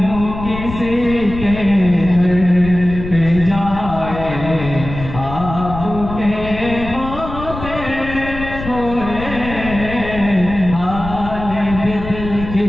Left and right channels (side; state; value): left; noise; rumble, 9 dB below the sound